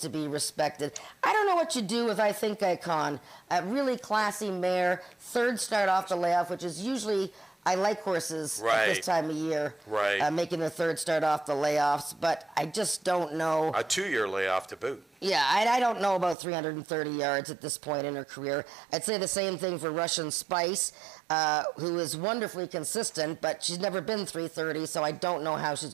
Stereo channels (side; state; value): left; drops out; at 16.4 s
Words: be respected. I don't know what you do with I Think Icon. A really classy mare, 3rd start off the layoff, which is usually, I like horses at this time of year, making the 3rd start off the layoffs, but I just don't know. A 2-year layoff to boot. Yeah, I don't know about 330 yards at this point in her career. I'd say the same thing for Russian Spice, who is wonderfully consistent, but she's never been 330, so I don't know how